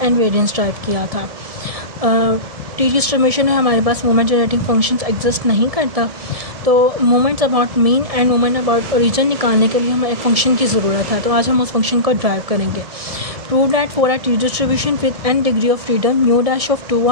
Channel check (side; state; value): left; late; 1.7 ms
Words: एंड वेरिएंस ड्राइव किया था। टी डिस्ट्रीब्यूशन में हमारे पास मोमेंट जनरेटिंग फंक्शंस एग्जिस्ट नहीं करता, तो moments about mean and moment about origin निकालने के लिए हमें एक फंक्शन की ज़रूरत है। तो आज हम उस फंक्शन को ड्राइव करेंगे। Prove that for a t distribution with n degree of freedom mu dash of